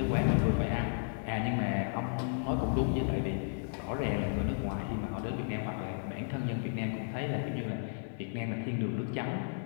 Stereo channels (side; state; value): right; silent; digital silence